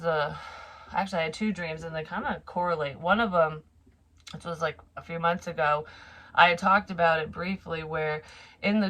I had 2 dreams, and they kind of correlate. One of them, which was like a few months ago, I had talked about it briefly, where in the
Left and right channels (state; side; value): identical; both; correlation 1.00